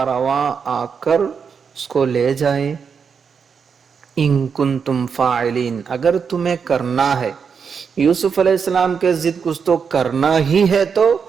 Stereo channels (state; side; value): quieter; left; 6.3 dB